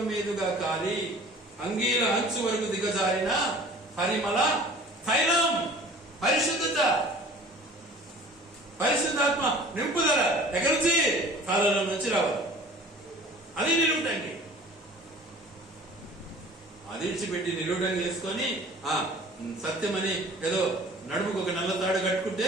మీదుగా కాలి అంగీల అంచు వరకు దిగజారిన పరిమళ తైలం, పరిశుద్ధత, పరిశుద్ధాత్మ నింపుదల ఎక్కడి నుంచి? తలలో నుంచి రావాలి. అది నిలువుటంగి. అది ఇడిచిపెట్టి నిలువుటంగి వేసుకొని సత్యమని ఏదో నడుముకు ఒక నల్ల తాడు కట్టుకుంటే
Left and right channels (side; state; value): both; normal; correlation 0.46